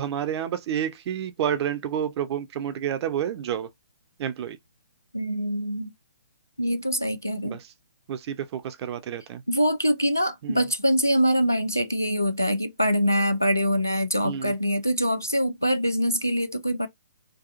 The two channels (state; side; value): inverted; both; correlation -0.74